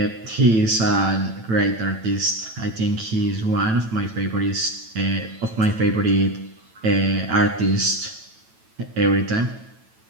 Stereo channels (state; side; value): late; left; 9.0 ms